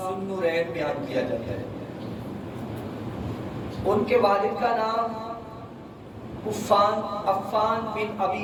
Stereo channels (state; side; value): identical; both; correlation 1.00